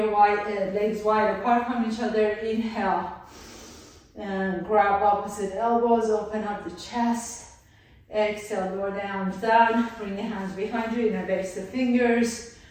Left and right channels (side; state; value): both; identical; correlation 1.00